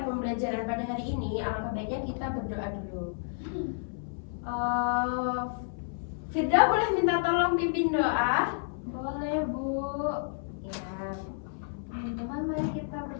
pembelajaran pada hari ini, alangkah baiknya kita berdoa dulu. Firda boleh minta tolong pimpin doa? Boleh, Bu. Ya. Teman-teman, mari kita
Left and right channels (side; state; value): right; silent; 57 dB below the other